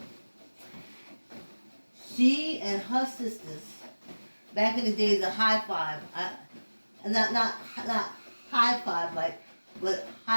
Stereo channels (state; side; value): inverted; both; correlation -1.00